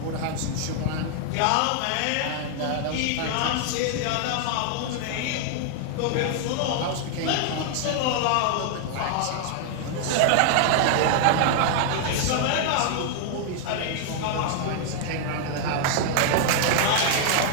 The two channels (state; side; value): different; both; correlation 0.00